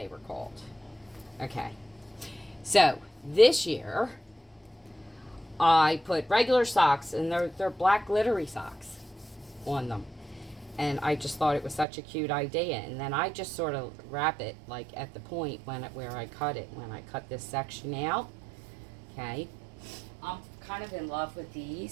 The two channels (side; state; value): left; drops out; at 11.9 s